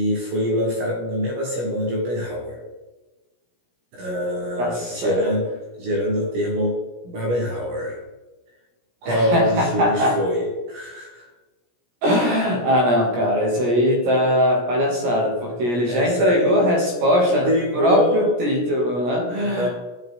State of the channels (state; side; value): late; left; 17 ms